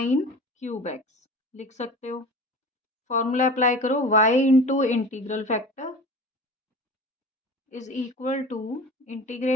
cube x लिख सकते हो। फॉर्मूला अप्लाई करो, y into integral factor is equal to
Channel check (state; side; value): normal; both; correlation 0.36